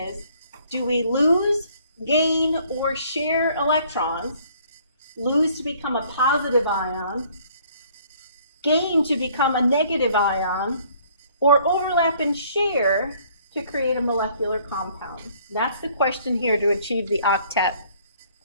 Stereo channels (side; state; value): both; inverted; correlation -0.60